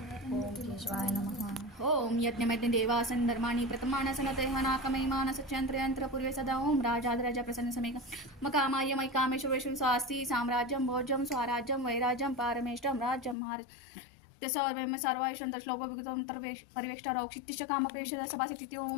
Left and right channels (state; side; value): drops out; right; at 13.4 s